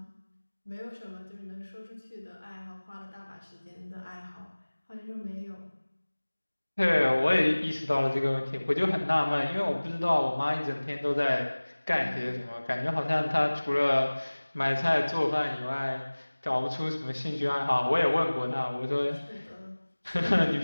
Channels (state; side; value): inverted; both; correlation -1.00